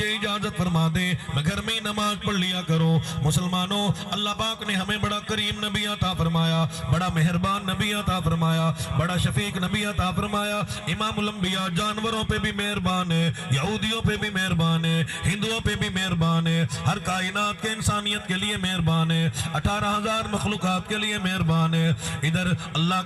اجازت فرما دیں میں گھر میں ہی نماز پڑھ لیا کروں۔ مسلمانوں اللہ پاک نے ہمیں بڑا کریم نبی عطا فرمایا، بڑا مہربان نبی عطا فرمایا، بڑا شفیق نبی عطا فرمایا۔ امام الانبیاء جانوروں پہ بھی مہربان ہے، یہودیوں پہ بھی مہربان ہے، ہندوؤں پہ بھی مہربان ہے، ہر کائنات کے انسانیت کے لیے مہربان ہے، 18,000 مخلوقات کے لیے مہربان زبان ہے. ادھر اللہ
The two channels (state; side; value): identical; both; correlation 1.00